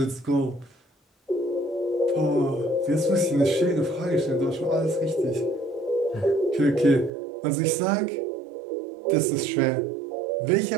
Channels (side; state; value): left; drops out; at 7.1 s